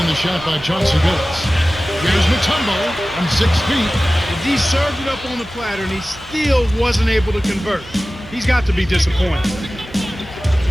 the shot by Chauncey Billups. Here's Mutombo from 6 feet. He served it up on the platter, and he still wasn't able to convert. He's got to be disappointed.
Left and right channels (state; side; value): normal; both; correlation 0.96